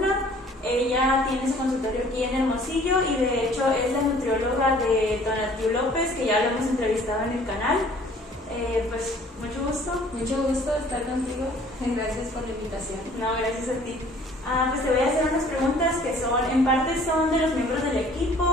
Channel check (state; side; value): normal; both; correlation 0.54